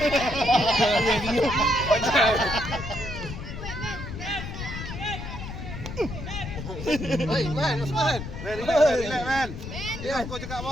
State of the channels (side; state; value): left; noise; rumble, 8 dB below the sound